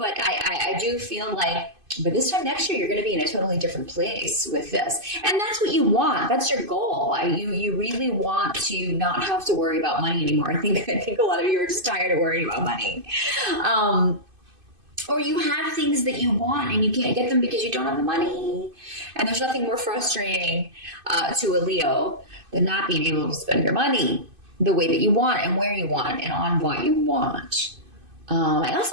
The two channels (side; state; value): left; late; 2.5 ms